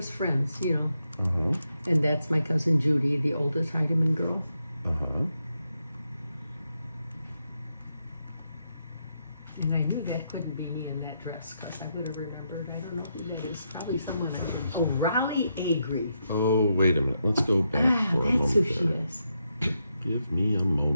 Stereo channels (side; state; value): both; inverted; correlation -0.82